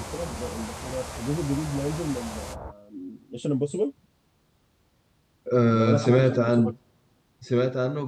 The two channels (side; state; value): both; identical; correlation 1.00